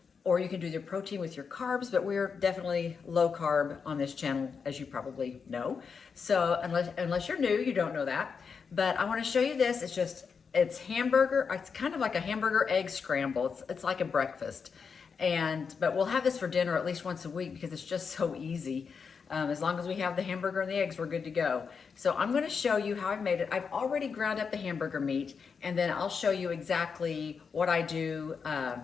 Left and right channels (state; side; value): quieter; right; 5.8 dB